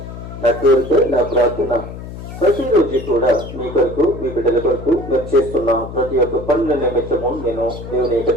నా కోరిక, నా ప్రార్థన. ప్రతిరోజు కూడా మీ కొరకు, మీ బిడ్డల కొరకు మేము చేస్తున్న ప్రతి ఒక్క పనుల నిమిత్తము నేను దేవుని యొక్క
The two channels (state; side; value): noise; left; hum, 11 dB below the sound